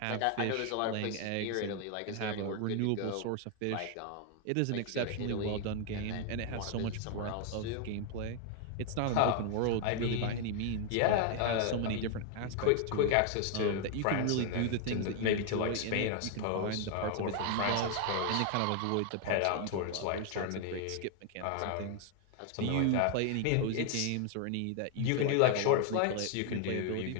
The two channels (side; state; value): both; different; correlation 0.00